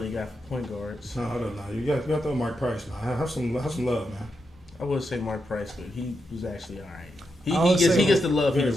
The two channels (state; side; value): normal; both; correlation 0.85